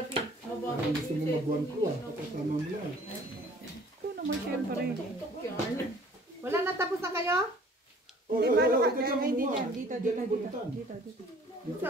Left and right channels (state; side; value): normal; both; correlation 0.53